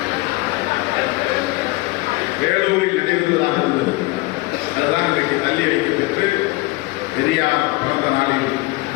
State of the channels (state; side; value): quieter; right; 21.8 dB